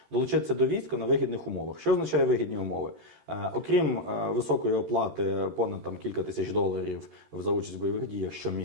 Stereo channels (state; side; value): late; left; 13 ms